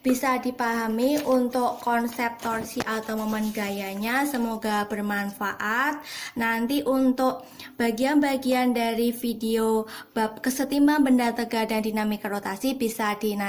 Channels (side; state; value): both; identical; correlation 1.00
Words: bisa dipahami untuk konsep torsi atau momen gayanya. Semoga bermanfaat. Nanti untuk bagian-bagian dari video bab kesetimbang benda tegak dan dinamika rotasi bisa